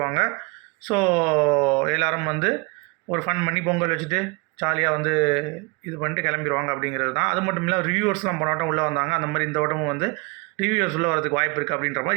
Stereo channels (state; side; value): quieter; left; 29.0 dB